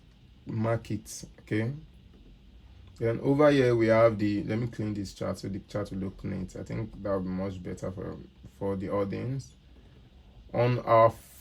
mark it, okay? Then over here we have the, let me clean this chart so the chart will look neat. I think that would be much better for the audience. On our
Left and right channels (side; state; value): both; identical; correlation 1.00